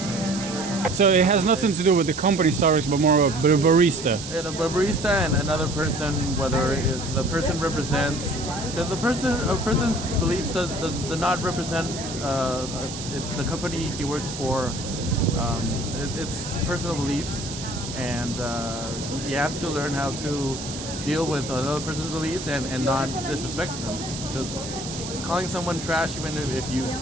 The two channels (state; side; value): noise; right; hiss, 9 dB below the sound